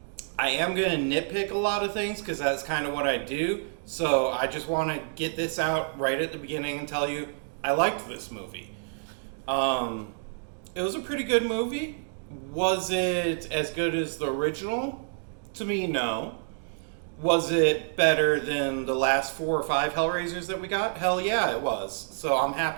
am going to nitpick a lot of things because that's kind of what I do. So, I just want to get this out right at the beginning and tell you I liked this movie. It was a pretty good movie. Was it as good as the original? To me, no. Was it better than the last 4 or 5 Hellraisers that we got? Hell yeah, it was. So, I'm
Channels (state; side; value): silent; left; digital silence